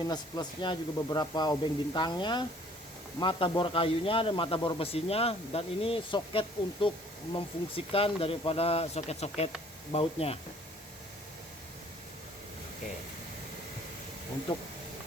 plusnya, juga beberapa obeng bintangnya, mata bor kayunya dan mata bor besinya, dan ini soket untuk memfungsikan daripada soket-soket bautnya. Oke. Untuk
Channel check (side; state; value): both; normal; correlation 0.56